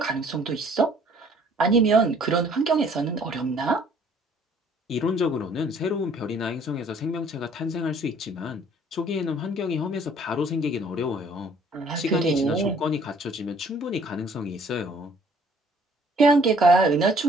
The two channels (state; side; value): normal; both; correlation 0.58